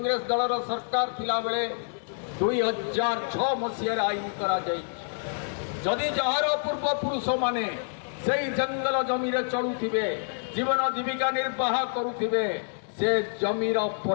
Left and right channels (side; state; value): right; silent; digital silence